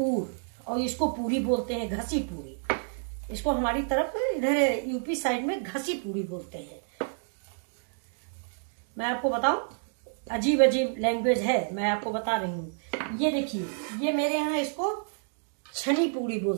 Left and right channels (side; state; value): left; silent; digital silence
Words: और इसको पूरी बोलते हैं, घसी पूरी। इसको हमारी तरफ इधर यूपी साइड में घसी पूरी बोलते हैं। मैं आपको बताऊं, अजीब अजीब लैंग्वेज है, मैं आपको बता रही हूँ। ये देखिए, ये मेरे यहाँ इसको छनी पूरी